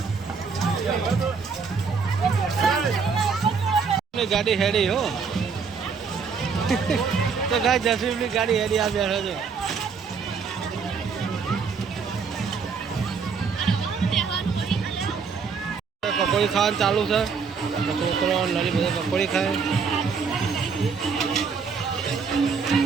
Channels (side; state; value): left; quieter; 5.6 dB